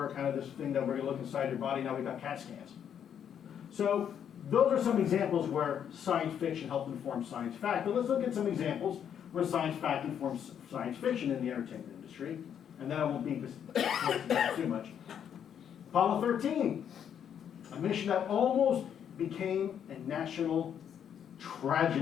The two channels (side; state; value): right; quieter; 8.7 dB